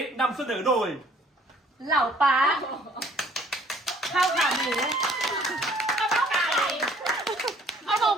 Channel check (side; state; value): both; normal; correlation 0.58